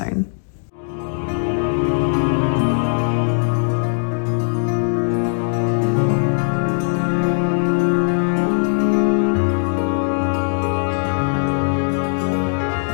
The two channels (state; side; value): silent; right; digital silence